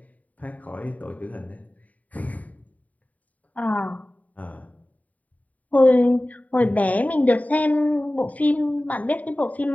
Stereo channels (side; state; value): right; late; 0.072 ms